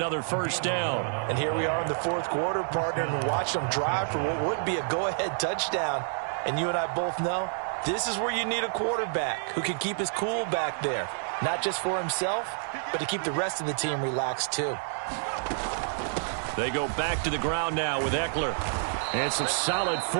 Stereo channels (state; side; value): silent; left; digital silence